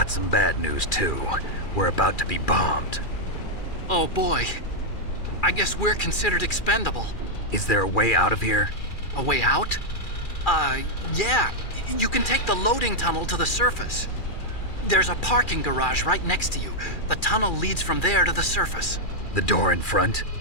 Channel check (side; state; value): right; late; 2.4 ms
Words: some bad news, too. We're about to be bombed. Oh, boy. I guess we're considered expendable. Is there a way out of here? A way out? Yeah. You can take the loading tunnel to the surface. There's a parking garage right next to you. The tunnel leads from there to the surface. The door in front?